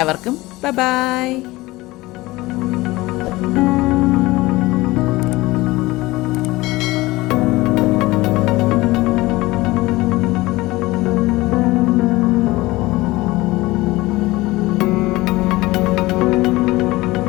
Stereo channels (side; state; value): right; quieter; 19.9 dB